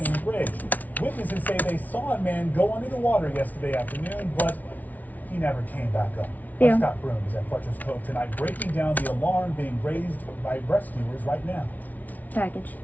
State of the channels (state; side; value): late; right; 0.076 ms